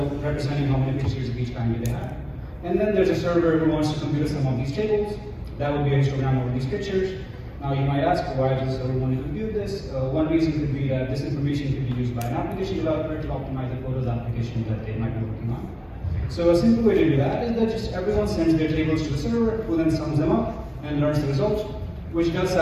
representing how many pictures of each kind they have. And then there's a server who wants to compute some of these tables. That would be a histogram over these pictures. Now you might ask, why does the server want to compute this? One reason could be that this information could be used by an application developer to optimize the photos application that they might be working on. So a simple way to do that is that just everyone sends their tables to the server, who then sums them up and learns the result, which does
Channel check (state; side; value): identical; both; correlation 1.00